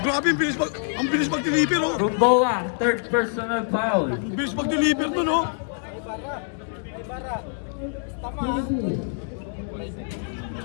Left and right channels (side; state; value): right; silent; digital silence